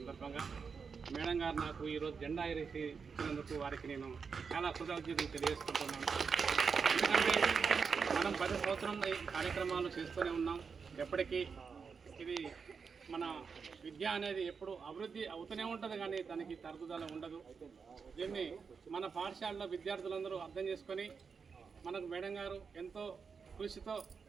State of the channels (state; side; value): quieter; left; 5.6 dB